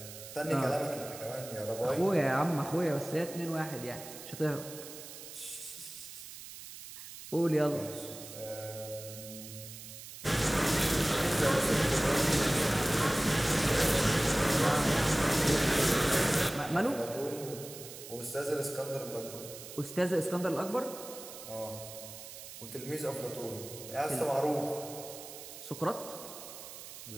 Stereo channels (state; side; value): noise; right; hiss, 13 dB below the sound